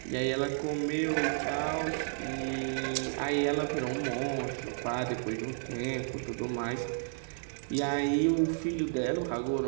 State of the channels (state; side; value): silent; left; digital silence